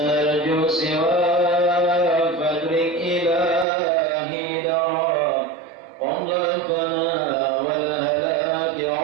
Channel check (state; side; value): drops out; left; at 3.7 s